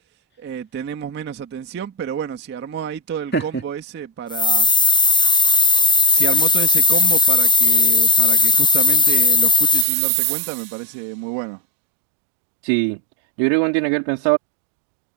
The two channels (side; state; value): left; drops out; at 9.9 s